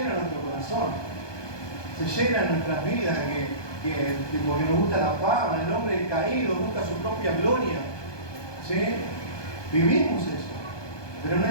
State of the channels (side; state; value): right; late; 1.2 ms